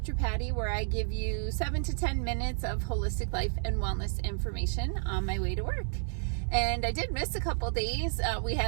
Patty, where I give you 7 to 10 minutes of holistic life and wellness information on my way to work. And I did miss a couple days. We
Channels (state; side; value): silent; left; 57 dB below the other